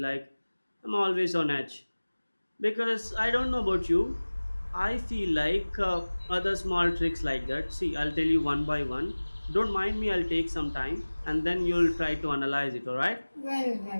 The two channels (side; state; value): both; inverted; correlation -1.00